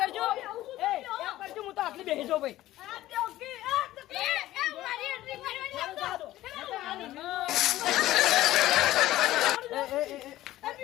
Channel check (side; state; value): right; quieter; 15.3 dB